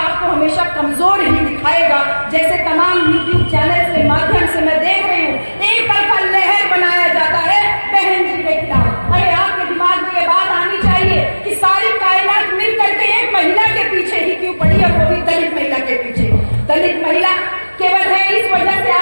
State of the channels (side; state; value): both; inverted; correlation -1.00